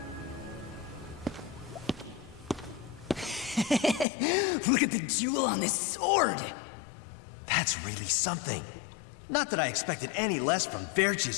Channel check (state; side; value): drops out; right; at 4.0 s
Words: Look at the jewel on this sword! That's really something. Not that I expected any less from